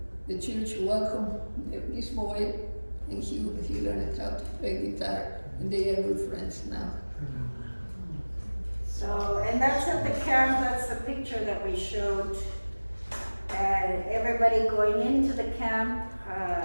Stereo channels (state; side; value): inverted; both; correlation -1.00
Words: the church welcomed this boy, and he learned how to play guitar, and they are good friends now. So, and that's at the camp, that's the picture that we showed. Everybody going into the camp,